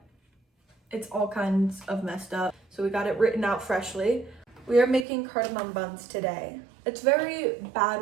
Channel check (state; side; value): drops out; left; at 5.1 s